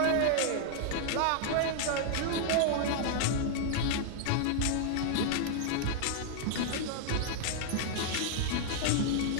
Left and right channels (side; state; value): both; different; correlation -0.01